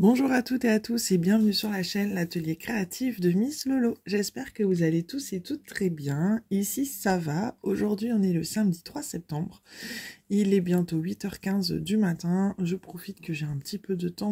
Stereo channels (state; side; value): identical; both; correlation 1.00